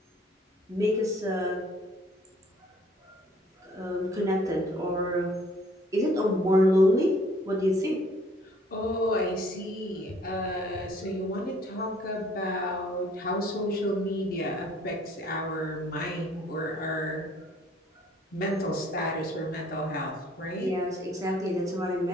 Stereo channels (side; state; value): both; normal; correlation 0.58